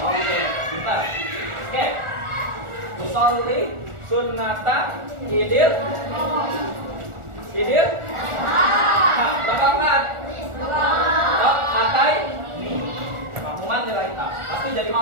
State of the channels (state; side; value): late; left; 1.4 ms